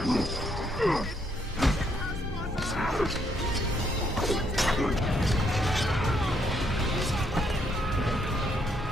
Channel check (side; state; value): both; normal; correlation 0.72